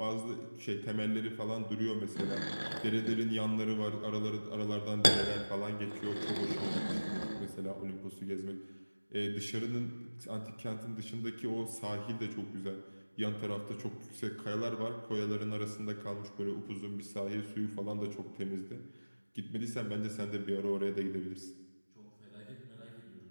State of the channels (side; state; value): both; inverted; correlation -1.00